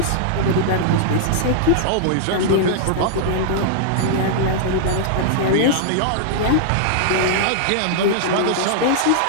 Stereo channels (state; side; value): different; both; correlation -0.01